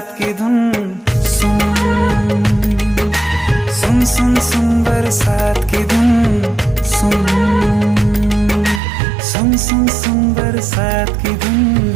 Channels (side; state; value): left; drops out; at 8.8 s